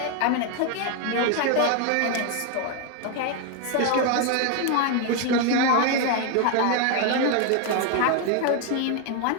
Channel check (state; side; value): different; both; correlation 0.01